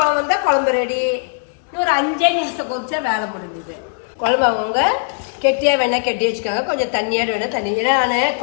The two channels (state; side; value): silent; right; digital silence